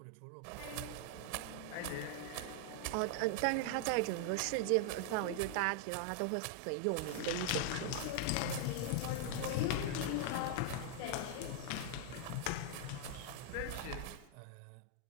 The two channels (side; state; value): both; different; correlation 0.00